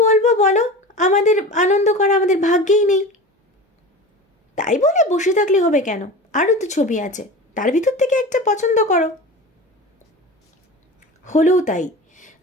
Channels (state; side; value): normal; both; correlation 0.32